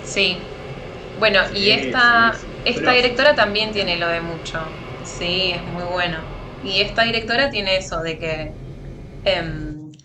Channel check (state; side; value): identical; both; correlation 1.00